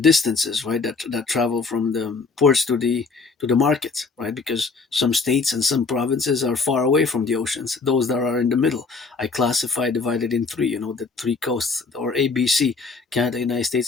right, that travel from the ports to the markets, right? Because some states and some provinces are far away from the oceans. Those that are in the middle, I classify, divided in three, the three coasts, or ABC: Canada, United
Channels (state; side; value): quieter; right; 4.4 dB